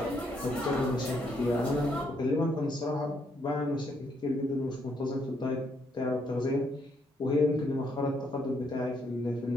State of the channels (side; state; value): both; normal; correlation 0.74